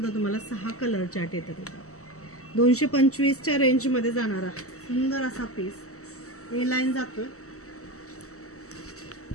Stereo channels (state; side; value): late; right; 0.65 ms